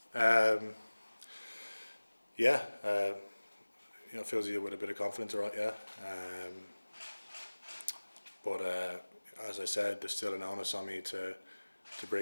Yeah, it fills you with a bit of confidence, right? Yeah. But as I said, there's still an onus on me to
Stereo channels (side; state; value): both; inverted; correlation -1.00